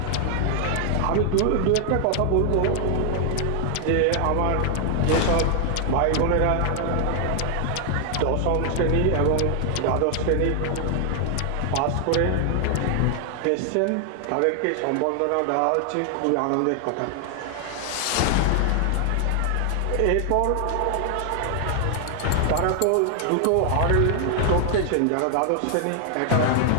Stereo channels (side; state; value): both; different; correlation 0.00